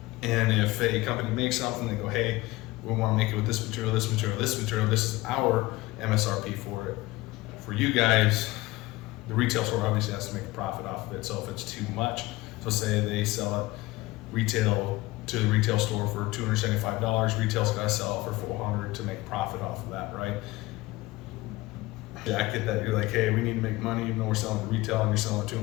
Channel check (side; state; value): right; quieter; 19.8 dB